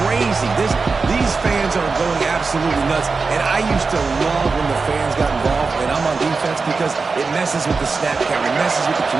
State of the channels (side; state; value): left; quieter; 4.4 dB